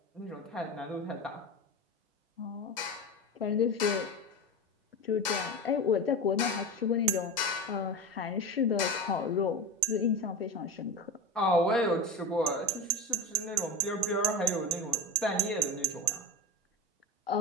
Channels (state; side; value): normal; both; correlation 0.25